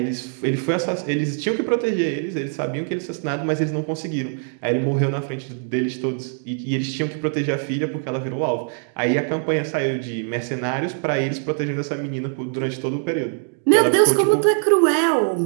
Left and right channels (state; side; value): silent; left; 64 dB below the other